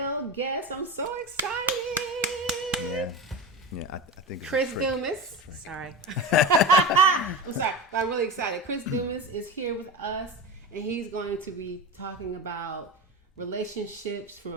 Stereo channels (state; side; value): normal; both; correlation 0.24